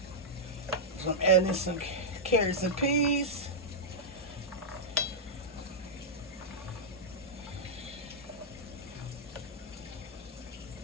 So I'm adding some carrots and peas.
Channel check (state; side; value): normal; both; correlation -0.07